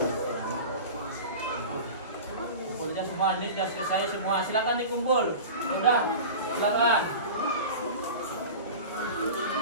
Kumpulnya semua, ini sudah selesai semua. Silakan dikumpul. Sudah, silakan.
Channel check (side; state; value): both; inverted; correlation -0.33